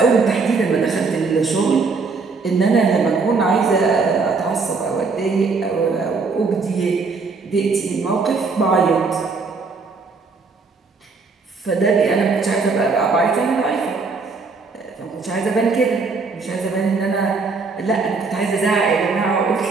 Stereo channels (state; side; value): quieter; left; 4.4 dB